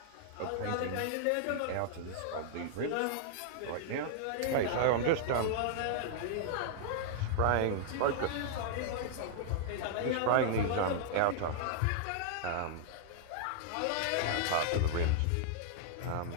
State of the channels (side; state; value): both; different; correlation -0.01